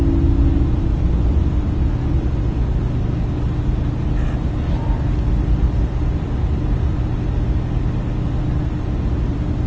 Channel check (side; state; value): both; identical; correlation 1.00